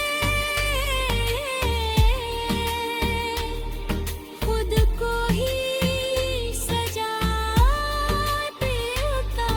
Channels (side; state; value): both; identical; correlation 1.00